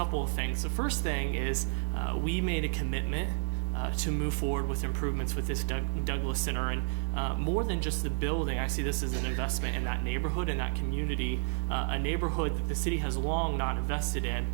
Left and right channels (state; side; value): silent; left; digital silence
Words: of things. The first thing is we made a commitment to move forward with improvements with this Douglas Center, and more than just the building, I see this as an investment in that neighborhood and that community, a neighborhood that the city has long not invested in